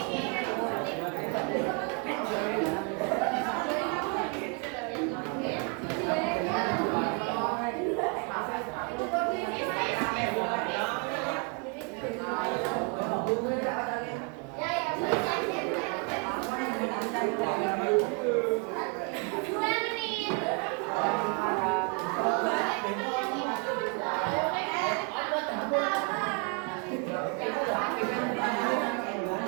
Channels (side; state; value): left; quieter; 35.4 dB